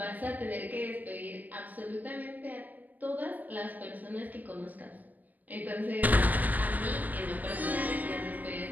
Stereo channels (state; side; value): late; left; 0.083 ms